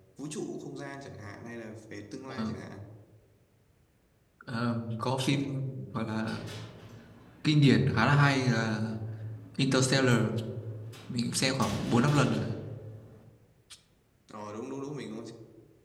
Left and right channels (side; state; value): both; identical; correlation 1.00